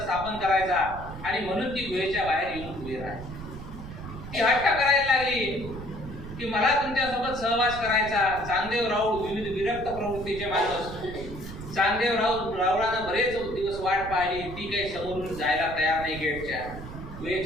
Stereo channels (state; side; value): noise; right; rumble, 11 dB below the sound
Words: करायचा आणि म्हणून ती गुहेच्या बाहेर येऊन उभी राहिली. ती हट्ट करायला लागली की मला तुमच्यासोबत सहवास करायचा. चांगदेव राऊळ विविध विरक्त प्रवृत्तीचे माणूस. चांगदेव रावळानं बरेच दिवस वाट पाहिली. ती काही समोरून जायला तयार नाही. गेटच्या